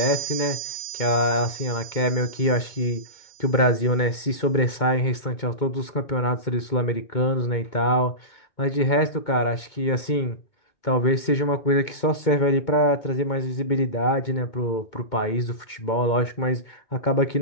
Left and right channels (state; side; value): late; right; 2.2 ms